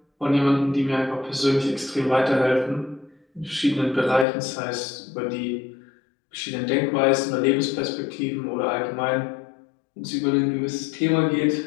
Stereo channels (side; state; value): right; drops out; at 4.2 s